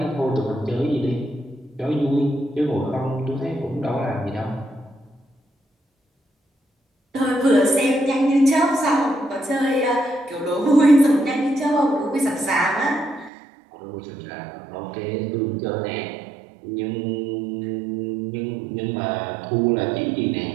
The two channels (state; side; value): drops out; left; at 13.3 s